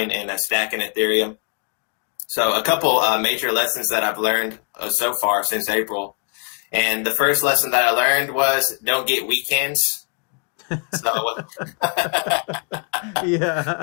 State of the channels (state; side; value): quieter; right; 37.4 dB